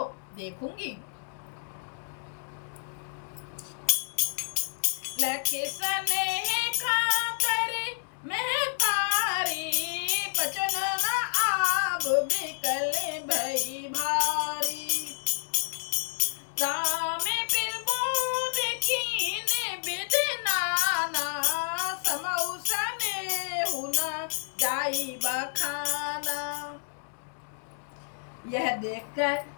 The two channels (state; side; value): silent; right; digital silence